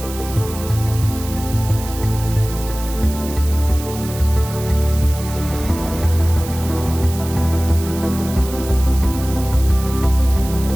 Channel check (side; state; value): right; noise; hiss, 13 dB below the sound